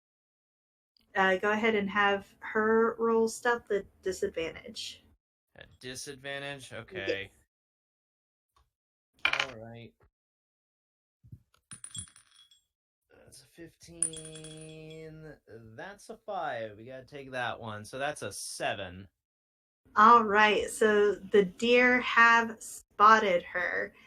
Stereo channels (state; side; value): identical; both; correlation 1.00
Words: ahead and have her roll stealth at disadvantage. At disadvantage? Okay. Yes. Alright. That's a 15. That's a 5. We gotta take that one. So that's a 7. All right. So the deer have spotted her.